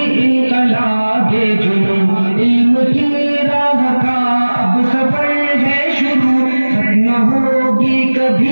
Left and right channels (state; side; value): inverted; both; correlation -1.00